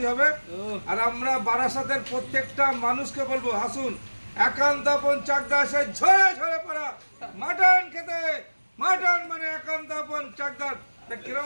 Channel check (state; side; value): inverted; both; correlation -1.00